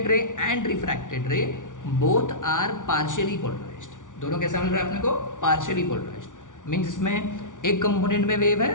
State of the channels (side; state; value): right; late; 0.87 ms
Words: ray and refracted ray both are partially polarized. दोनों कैसा मिल रहा है अपने को, पार्शियली पोलराइज्ड. मीन्स इसमें एक कंपोनेंट में वेव